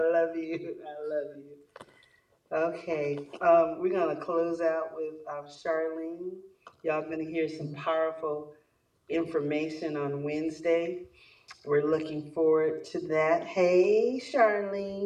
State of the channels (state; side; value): identical; both; correlation 1.00